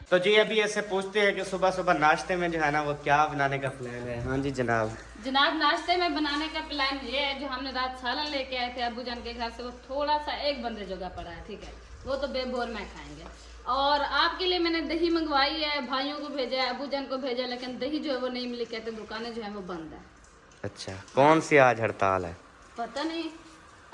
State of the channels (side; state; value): both; identical; correlation 1.00